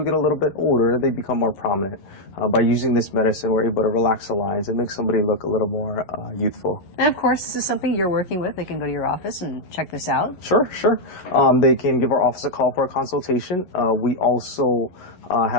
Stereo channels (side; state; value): right; late; 11 ms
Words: get a little bit older, they become more prominent. By using this medicine, we're able to relax the lines and make somebody look a little more youthful. And of course, this is something you're working with. They can go to your office and check this out. Sure, sure. They can give our office a call for a consultation. We also